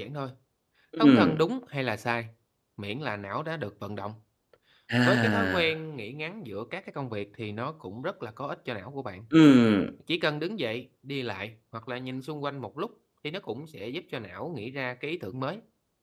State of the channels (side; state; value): both; identical; correlation 1.00